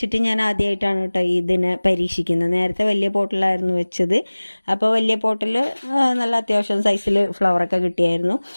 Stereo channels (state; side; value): inverted; both; correlation -1.00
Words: ഞാൻ ആദ്യമായിട്ടാണ് കേട്ടോ ഇതിനെ പരീക്ഷിക്കുന്നത്. നേരത്തെ വലിയ പോട്ടിലായിരുന്നു വെച്ചത്. അപ്പോൾ വലിയ പോട്ടിൽ നല്ല അത്യാവശ്യം സൈസിൽ ഫ്ലവറൊക്കെ കിട്ടിയായിരുന്നു.